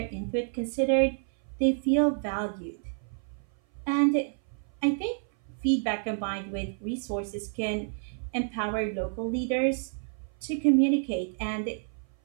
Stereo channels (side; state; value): left; silent; 56 dB below the other